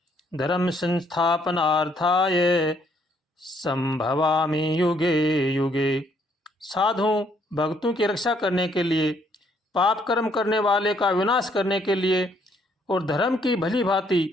धर्म संस्थापनार्थाय संभवामि युगे युगे। साधु भक्तों की रक्षा करने के लिए, पाप कर्म करने वाले का विनाश करने के लिए और धर्म की भली भांति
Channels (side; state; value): both; normal; correlation 0.68